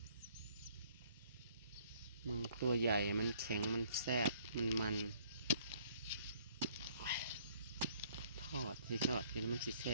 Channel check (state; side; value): inverted; both; correlation -0.61